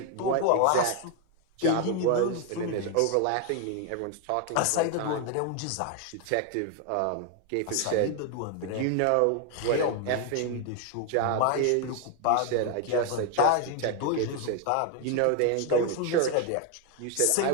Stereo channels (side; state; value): both; different; correlation 0.01